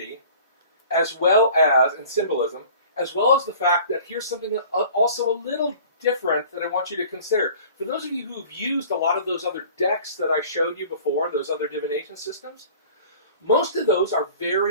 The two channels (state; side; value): inverted; both; correlation -0.46